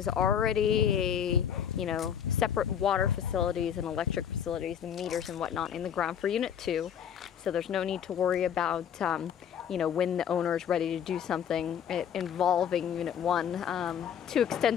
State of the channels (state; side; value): quieter; right; 8.6 dB